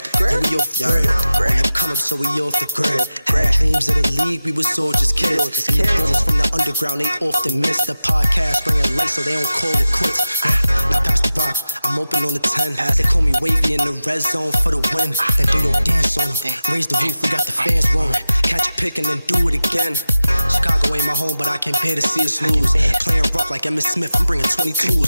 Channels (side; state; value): both; inverted; correlation -0.94